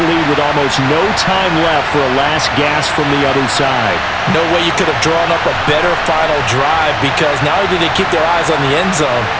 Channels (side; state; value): both; identical; correlation 1.00